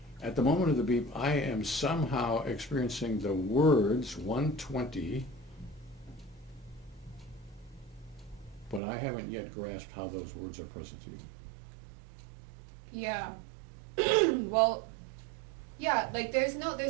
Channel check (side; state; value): left; drops out; at 8.8 s